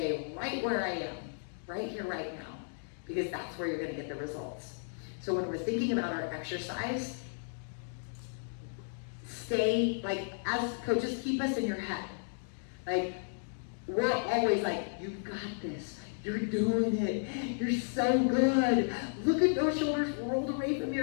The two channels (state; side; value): silent; right; digital silence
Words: right where I am, right here, right now, because that's where you're gonna get the results. So when we're thinking about our exercise, stay, like, as coaches, keep us in your head. Like, we're always like, you've got this, you're doing it, you're so good. Look at those shoulders rolled away from